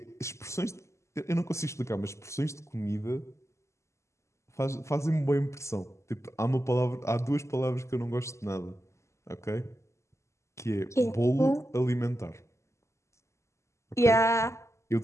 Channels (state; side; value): late; right; 0.14 ms